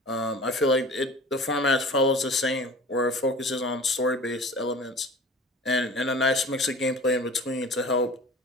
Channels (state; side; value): normal; both; correlation 0.40